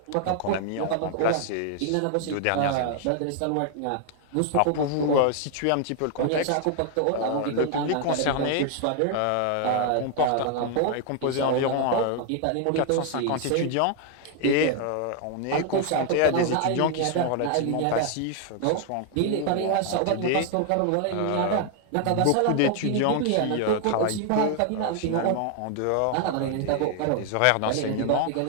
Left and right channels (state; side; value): different; both; correlation 0.00